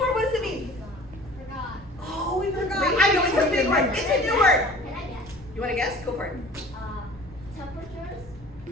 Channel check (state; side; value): noise; left; rumble, 22 dB below the sound